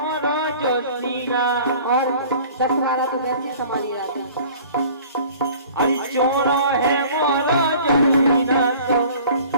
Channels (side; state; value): both; inverted; correlation -0.48